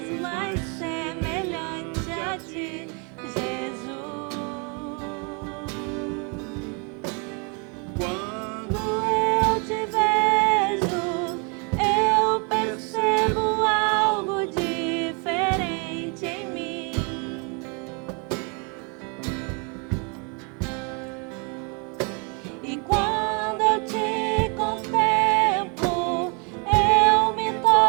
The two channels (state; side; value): quieter; left; 34.6 dB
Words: mais semelhante a Ti, Jesus. quando Quando eu te vejo, eu percebo algo diferente em mim. E quando eu te contemplo, eu me